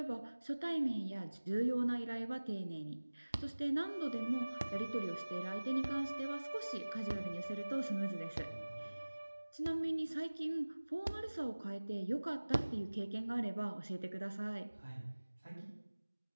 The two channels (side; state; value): both; inverted; correlation -1.00